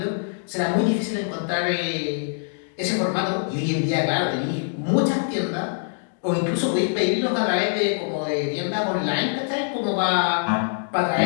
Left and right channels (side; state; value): right; silent; digital silence